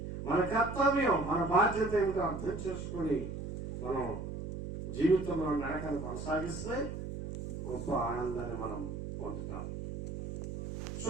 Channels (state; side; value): noise; right; hum, 7 dB below the sound